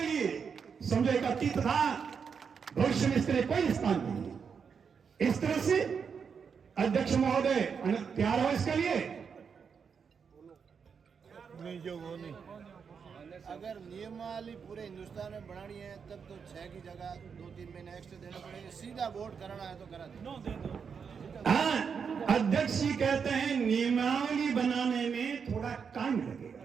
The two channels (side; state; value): left; quieter; 6.3 dB